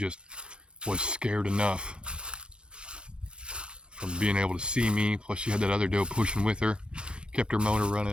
was scared enough from being able to see me. Plus she had that other doe pushing with her. Kept her motor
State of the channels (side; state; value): left; late; 0.053 ms